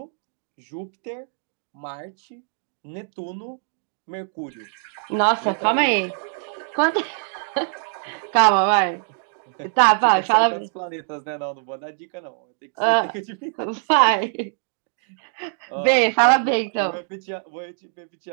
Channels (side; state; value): left; silent; digital silence